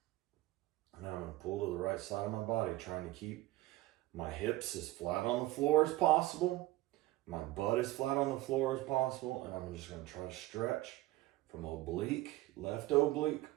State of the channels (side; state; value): left; quieter; 17.3 dB